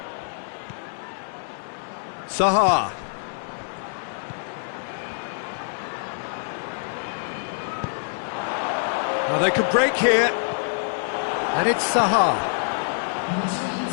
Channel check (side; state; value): right; silent; digital silence